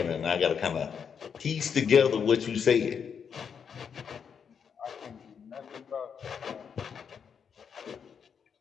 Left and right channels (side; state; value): right; quieter; 7.0 dB